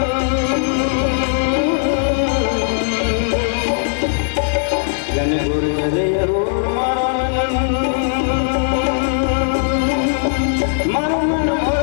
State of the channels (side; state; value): right; silent; 67 dB below the other